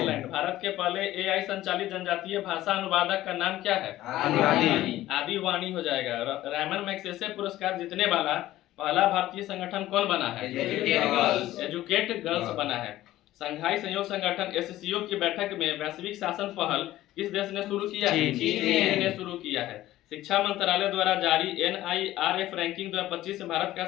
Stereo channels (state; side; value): quieter; right; 15.0 dB